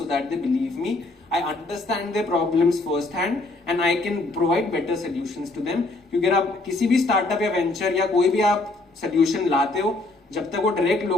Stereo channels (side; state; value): right; quieter; 3.1 dB